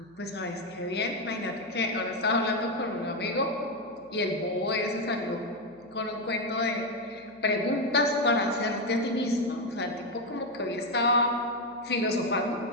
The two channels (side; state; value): right; noise; hum, 30 dB below the sound